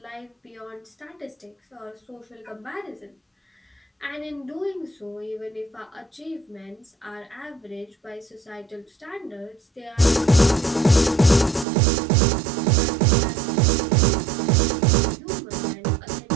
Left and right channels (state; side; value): drops out; left; at 11.7 s